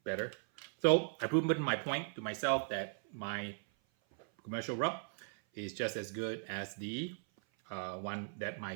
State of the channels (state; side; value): silent; left; 53 dB below the other